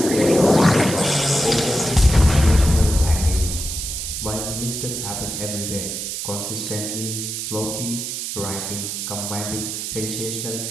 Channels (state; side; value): noise; right; hiss, 5 dB below the sound